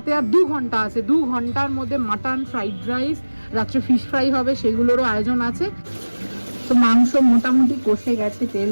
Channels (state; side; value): inverted; both; correlation -1.00